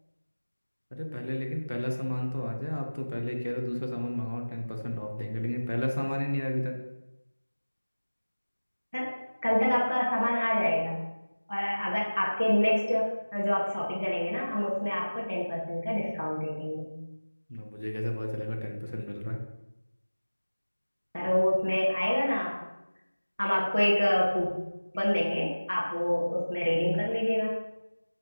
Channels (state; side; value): inverted; both; correlation -1.00